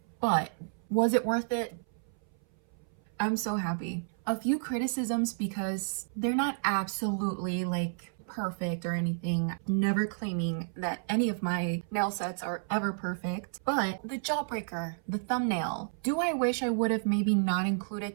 But was it worth it? I'm so happy. A few criticisms because they're not absolutely like perfect or anything. Never claiming that any of my nail sets are ever perfect. But the Jawbreaker, the thumbnail, do I wish I would have maybe not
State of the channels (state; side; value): silent; left; 57 dB below the other